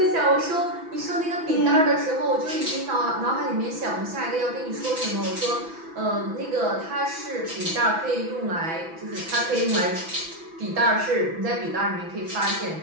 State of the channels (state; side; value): late; left; 6.0 ms